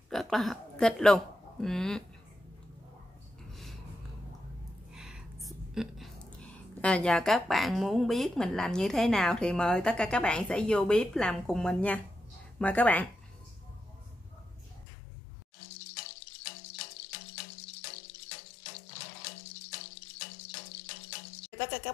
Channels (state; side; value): drops out; right; at 14.9 s